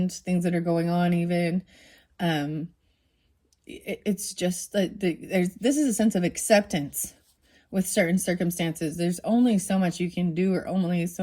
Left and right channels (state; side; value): identical; both; correlation 1.00